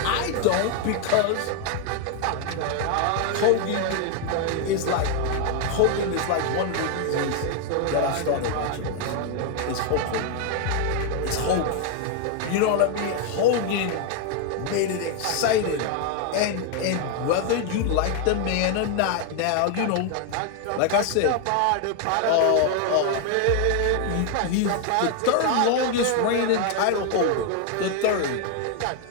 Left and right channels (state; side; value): different; both; correlation 0.01